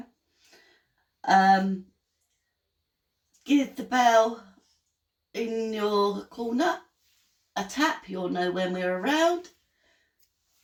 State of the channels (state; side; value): identical; both; correlation 1.00